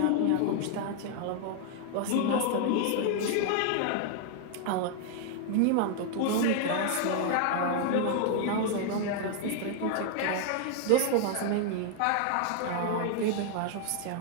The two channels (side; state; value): both; different; correlation 0.00